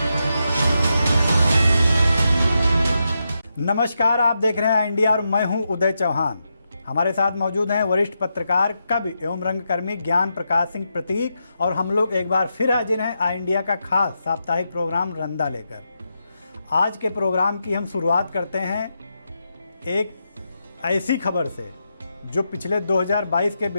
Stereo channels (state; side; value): inverted; both; correlation -0.85